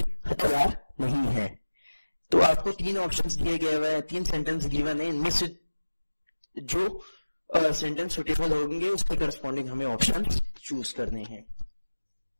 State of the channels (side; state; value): both; inverted; correlation -1.00